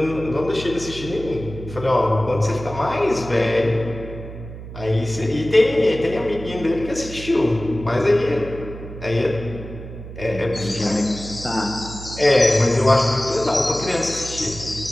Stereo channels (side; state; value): right; noise; hum, 12 dB below the sound